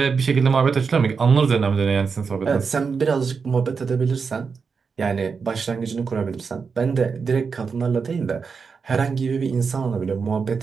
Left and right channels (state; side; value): quieter; left; 5.4 dB